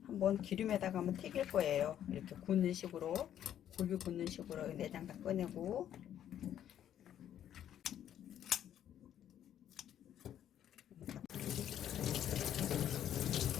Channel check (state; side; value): quieter; right; 10.6 dB